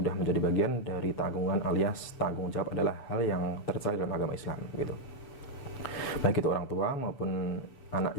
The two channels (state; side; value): late; right; 7.0 ms